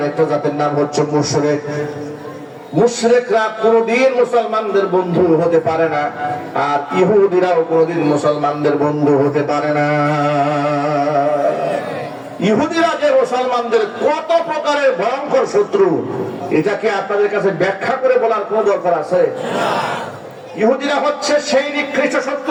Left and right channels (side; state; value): both; identical; correlation 1.00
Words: একটা জাতের নাম হচ্ছে মুশরিক। মুশরিকরা কোনদিন মুসলমানদের বন্ধু হতে পারে না, আর ইহুদিরাও কোনদিন মুসলমানদের বন্ধু হতে পারে না। ইহুদিরা যে মুসলমানদের কত প্রকারের ভয়ঙ্কর শত্রু, এটাকে আপনাদের কাছে ব্যাখ্যা করে বলার কোন দরকার আছে? ইহুদিরা হচ্ছে সেই নিকৃষ্ট শত্রু